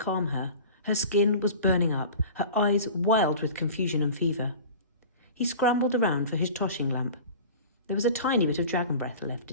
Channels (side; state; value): both; inverted; correlation -0.38